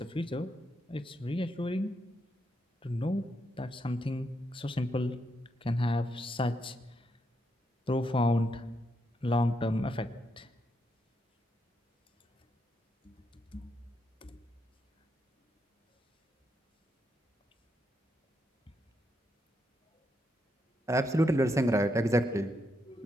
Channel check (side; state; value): both; normal; correlation 0.80